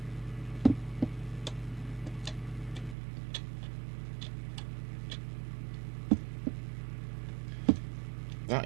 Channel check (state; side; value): drops out; left; at 3.0 s